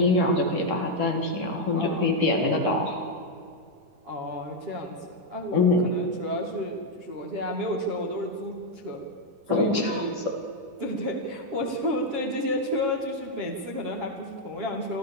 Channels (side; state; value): left; late; 10 ms